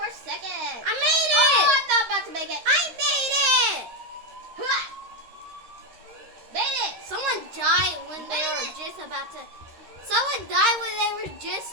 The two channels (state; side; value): late; left; 13 ms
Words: seconds. I made it. Oh, I'm not about to make it. I made it. Hua! Made it. Someone died when they were just about to. Someone died when they were just